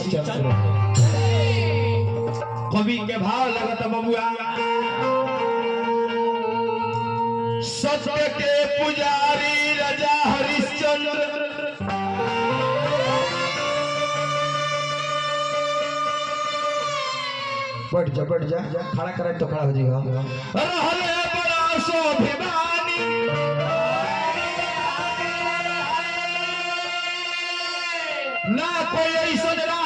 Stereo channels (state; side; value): identical; both; correlation 1.00